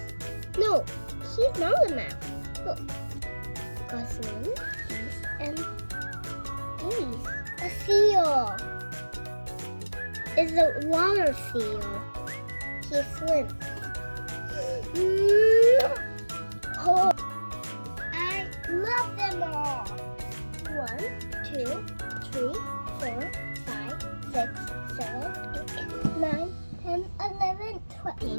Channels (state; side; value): inverted; both; correlation -1.00